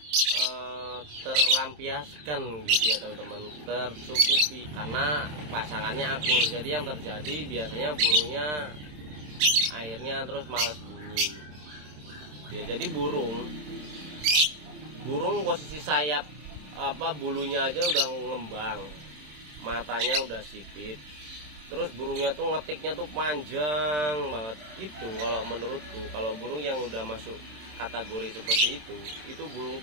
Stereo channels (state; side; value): late; left; 26 ms